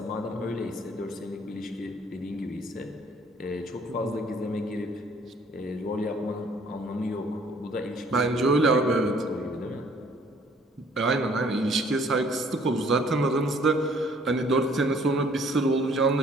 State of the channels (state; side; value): normal; both; correlation 0.59